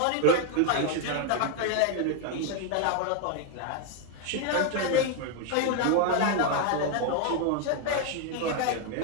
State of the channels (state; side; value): different; both; correlation 0.01